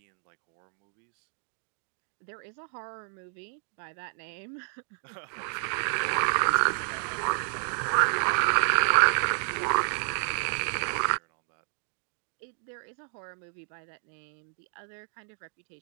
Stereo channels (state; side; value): silent; left; digital silence